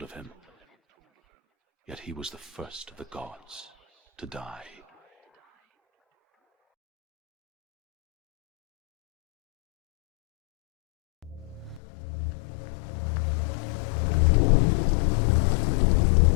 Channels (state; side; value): drops out; right; at 11.8 s